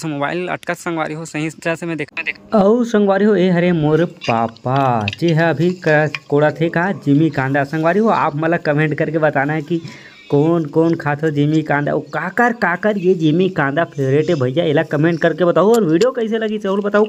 मोबाइल अटकत संगवारी हो, सही तरह से मैं देख और संगवारी हो ये हरे मोर पापा जी है अभी कोड़ा थे का जिमी कांदा। संगवारी हो आप मतलब कमेंट करके बताना है कि कौन कौन खाते हो जिमी कांदा, और काकर ये जिमी कांदा फेवरेट है भैया, इला कमेंट करके बताओ। और वीडियो कैसे लगी जरूर बताओ,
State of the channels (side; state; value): both; identical; correlation 1.00